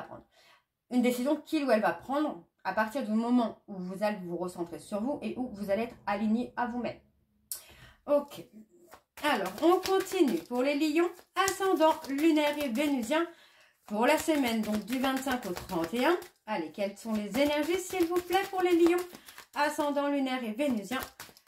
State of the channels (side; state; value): both; identical; correlation 1.00